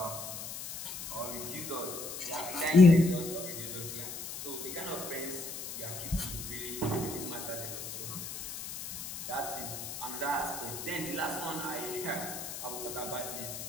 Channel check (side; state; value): left; noise; hiss, 8 dB below the sound